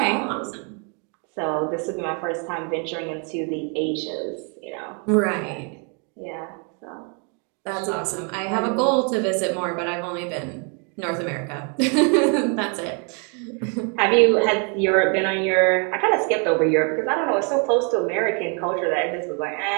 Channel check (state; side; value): quieter; left; 37.7 dB